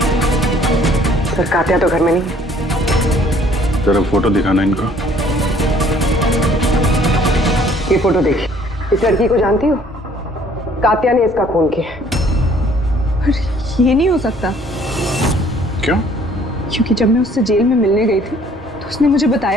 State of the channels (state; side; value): normal; both; correlation 0.58